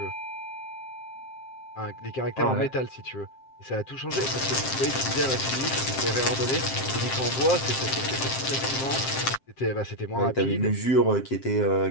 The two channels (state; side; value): late; right; 7.6 ms